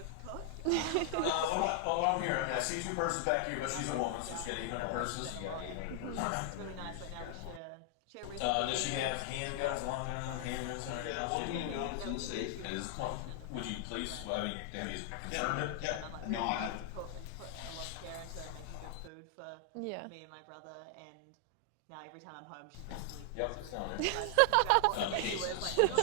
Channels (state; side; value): different; both; correlation 0.00